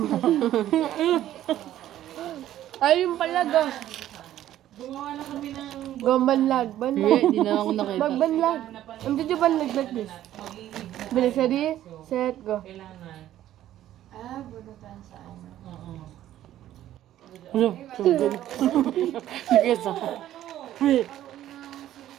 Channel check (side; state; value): left; quieter; 12.7 dB